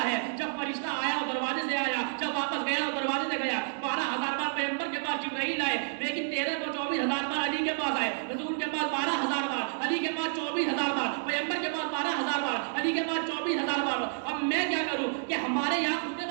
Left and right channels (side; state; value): left; silent; digital silence